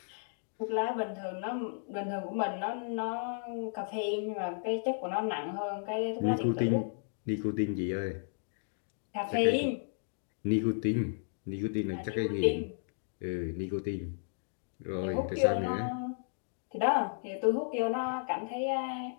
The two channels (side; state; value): right; silent; digital silence